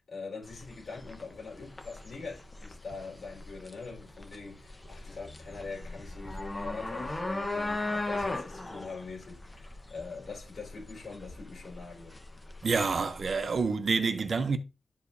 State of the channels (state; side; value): normal; both; correlation 0.89